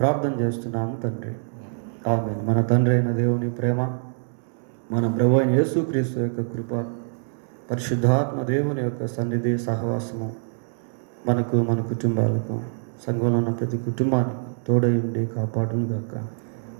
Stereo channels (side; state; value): left; silent; 62 dB below the other